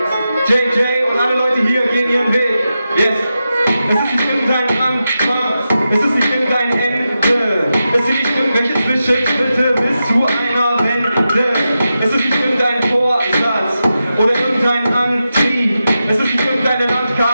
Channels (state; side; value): inverted; both; correlation -0.90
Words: JJ und alle Leute hier gehen ihren Weg, yes. Es ist nicht irgendein Anfang, es ist nicht irgendein Ende, es sind nicht irgendwelche Zwischenschritte bis zu einer Wende, es ist nicht irgendein Vorsatz oder irgendein Antrieb, es ist nicht irgendeine